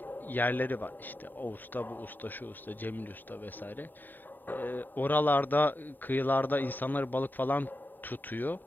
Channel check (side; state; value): right; late; 0.090 ms